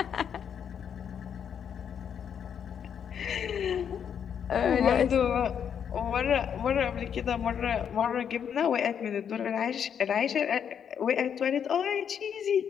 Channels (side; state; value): right; quieter; 8.0 dB